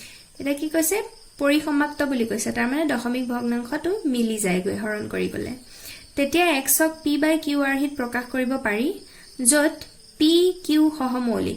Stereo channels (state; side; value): identical; both; correlation 1.00